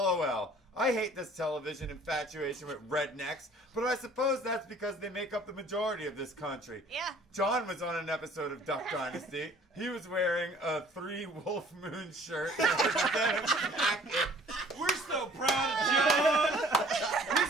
I hate this television infatuation with rednecks, but I suppose that's because they make up the majority of this country. Yeah. John was on an episode of Duck Dynasty. He was wearing a 3 Wolf Moon shirt and a denim jacket. We're so proud of John.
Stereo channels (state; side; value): normal; both; correlation 0.53